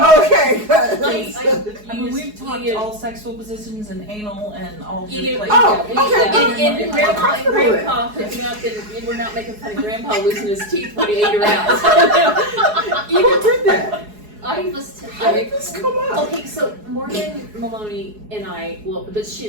Okay, good. We've talked all sexual positions and anal and all. Okay. And Grandma and Grandpa hooking up, and we're not making fun of Grandpa losing his teeth when he ate her out. You did that. How did this come up? Okay, so Morgan Maloney and I, but she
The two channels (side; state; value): left; late; 4.7 ms